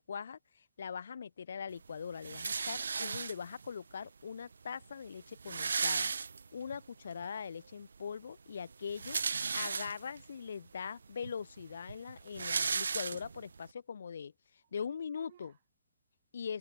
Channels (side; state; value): both; inverted; correlation -0.83